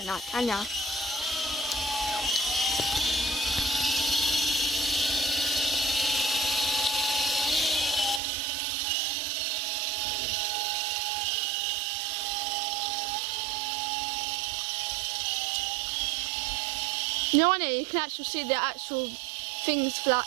like, can ya? You know, on it you can actually see the actual things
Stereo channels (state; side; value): drops out; left; at 8.2 s